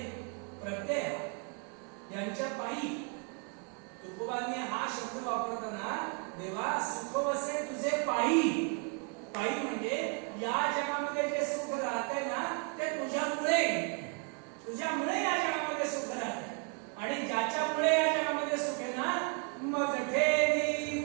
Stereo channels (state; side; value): quieter; left; 37.2 dB